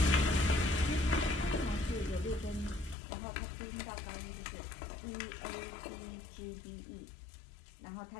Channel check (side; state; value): right; drops out; at 3.0 s